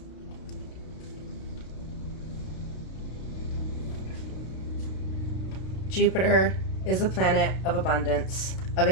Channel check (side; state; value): right; late; 32 ms